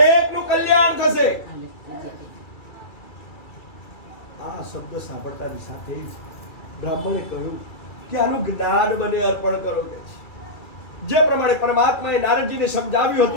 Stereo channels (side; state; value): right; late; 2.3 ms